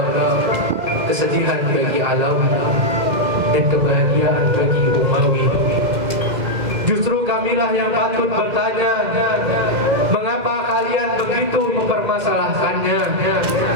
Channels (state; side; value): late; left; 2.0 ms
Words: kesedihan bagi Alawi dan kebahagiaan bagi Umawi. Justru kamilah yang patut bertanya, mengapa kalian begitu mempermasalahkannya?